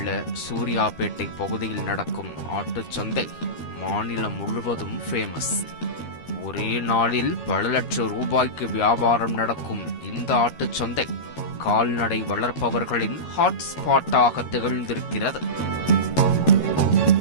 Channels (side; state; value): right; late; 13 ms